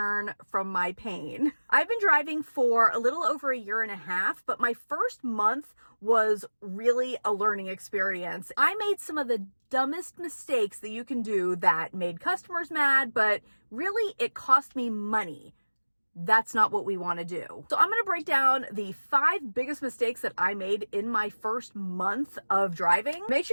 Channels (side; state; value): both; inverted; correlation -1.00